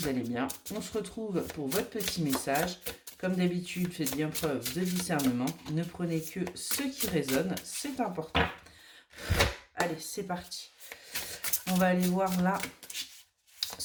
allez bien. On se retrouve pour votre petit message. Comme d'habitude, faites bien preuve de discernement. Ne prenez que ce qui résonne, c'est important. Allez, c'est parti. On va aller voir là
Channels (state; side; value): identical; both; correlation 1.00